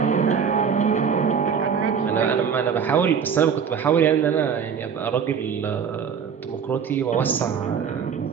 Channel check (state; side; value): quieter; left; 7.0 dB